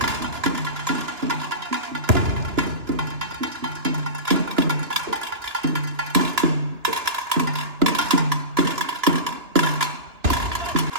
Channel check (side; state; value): left; late; 2.9 ms